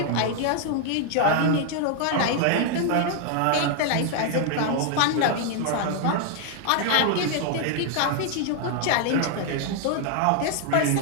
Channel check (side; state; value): both; different; correlation 0.00